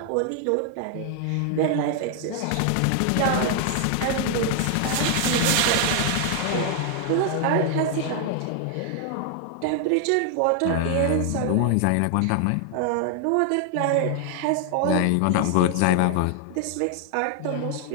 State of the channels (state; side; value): different; both; correlation 0.00